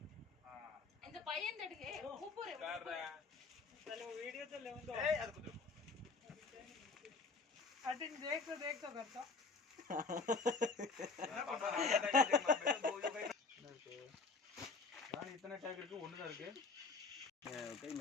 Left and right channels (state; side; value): quieter; right; 4.2 dB